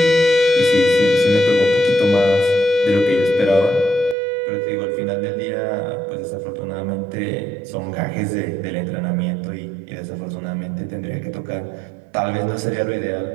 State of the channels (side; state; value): left; drops out; at 4.2 s